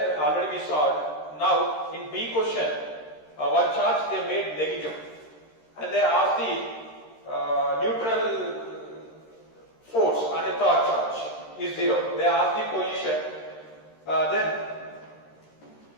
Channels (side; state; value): right; late; 13 ms